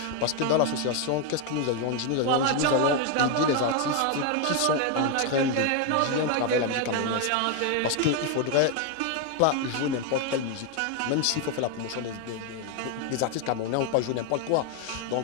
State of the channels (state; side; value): different; both; correlation 0.01